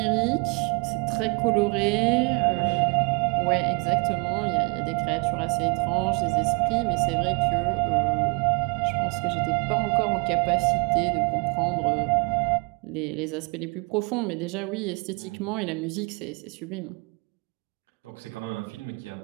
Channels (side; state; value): left; quieter; 31.2 dB